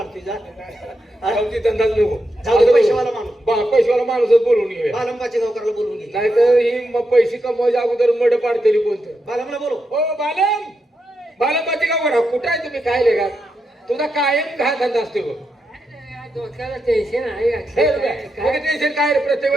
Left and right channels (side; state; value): both; normal; correlation 0.85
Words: जा. आमची धंदाच नको. जाऊ दे, पैसेवाला माणूस. पैसेवाला माणूसच बोलवून घेऊया. बालंबाची गावकरला बोलवून घे. नाहीतर ही पैसे कमवायच्या अगोदर मड पाडतेली कोणतं. बालमला बोलव. हो बालम, बालमबाची गाव कुठं आहे तुम्ही? काय लेगा तुझा कायम घा धंदा असतो बघ. डोक्याला टेन्शन आहे टेन्शन काय रे? प्रत्येक